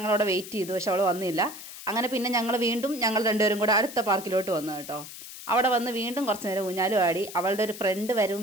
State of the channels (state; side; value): noise; left; hiss, 13 dB below the sound